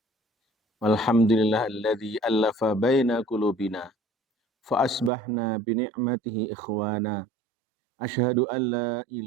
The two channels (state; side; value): drops out; left; at 5.1 s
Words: Walhamdulillah alladzi allafa baina qulubina fa asbahna binikmatihi ikhwana. Asyhadu an la